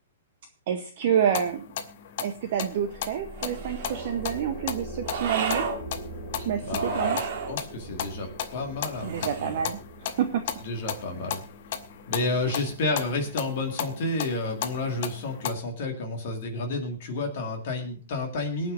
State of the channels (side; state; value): both; inverted; correlation -0.34